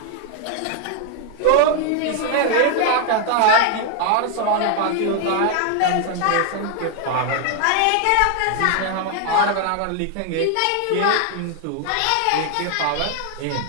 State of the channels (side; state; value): both; different; correlation 0.00